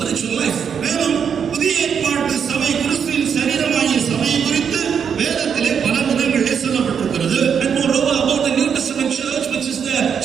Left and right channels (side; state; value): left; quieter; 7.3 dB